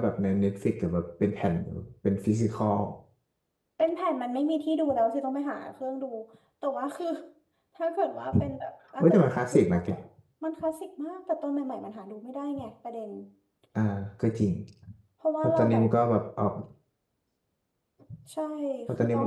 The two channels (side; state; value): both; identical; correlation 1.00